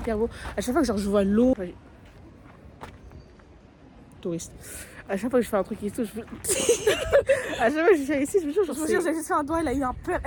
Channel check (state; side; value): identical; both; correlation 1.00